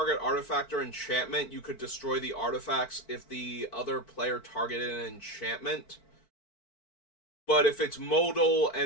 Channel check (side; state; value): right; late; 4.5 ms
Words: artifact or enchantment, you could destroy the artifacts if the other player targeted an enchantment. But if it's modal